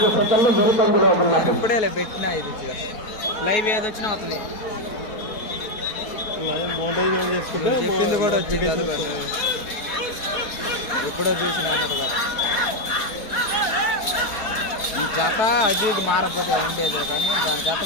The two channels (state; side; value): late; right; 4.3 ms